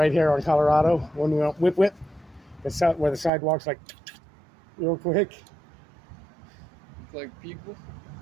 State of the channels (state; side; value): drops out; left; at 3.3 s